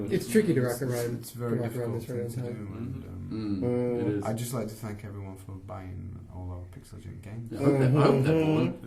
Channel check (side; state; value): both; identical; correlation 1.00